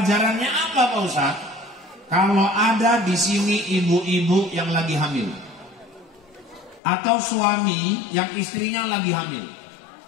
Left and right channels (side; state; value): right; drops out; at 6.8 s